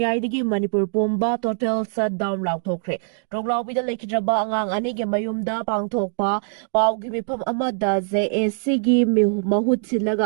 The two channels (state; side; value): silent; left; digital silence